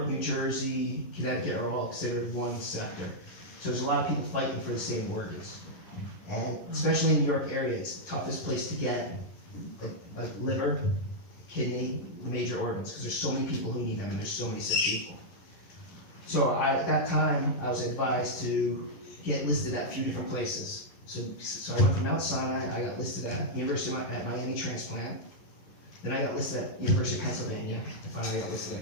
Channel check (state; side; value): late; right; 11 ms